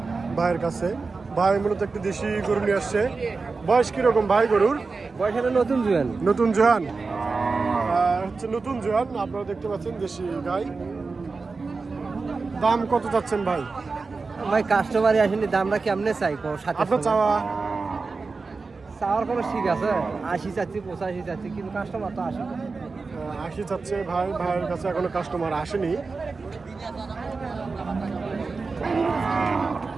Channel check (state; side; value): quieter; left; 4.2 dB